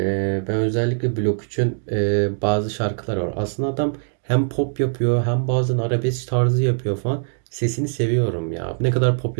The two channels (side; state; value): left; silent; digital silence